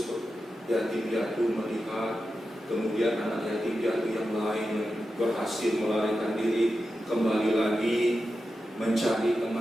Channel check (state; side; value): normal; both; correlation 0.90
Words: yatim piatu melihat, kemudian anak yatim piatu yang lain yang berhasil melarikan diri kembali lagi mencari